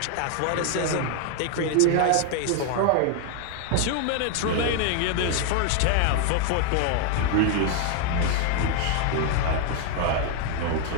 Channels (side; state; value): both; different; correlation 0.00